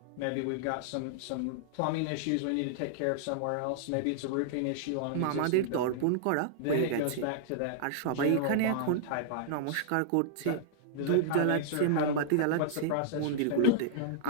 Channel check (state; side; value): different; both; correlation -0.01